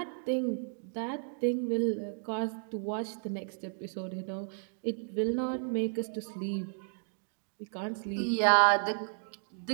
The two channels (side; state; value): left; silent; digital silence